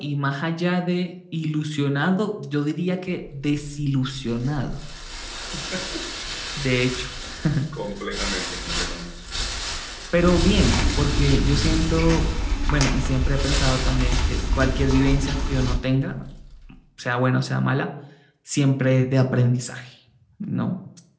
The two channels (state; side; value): identical; both; correlation 1.00